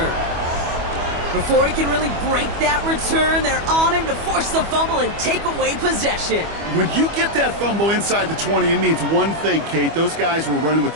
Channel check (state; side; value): late; left; 25 ms